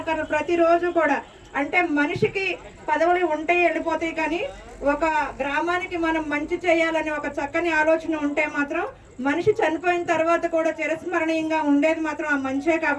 ప్రతిరోజు కూడా, అంటే మనిషికి పదవులు ఉంటాయి వెళ్ళిపోతాయి, కానీ ఒక గ్రామానికి మనం మంచి చేయాలని ఒక చక్కని ఆలోచన ఉంటే మాత్రం మనిషి చనిపోయిన తర్వాత కూడా చిరస్మరణీయంగా ఉండేది మాత్రం ఆ మంచే.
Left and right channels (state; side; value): identical; both; correlation 1.00